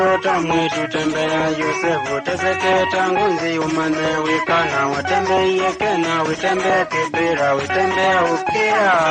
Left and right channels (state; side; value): identical; both; correlation 1.00